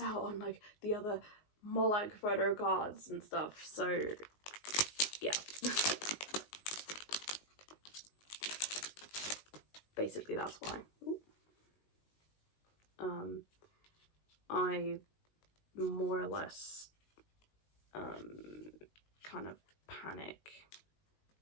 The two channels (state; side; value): late; right; 19 ms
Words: out on like the other Moloch photo cards and stuff. So yeah. Basically that's why. I more or less kind of panic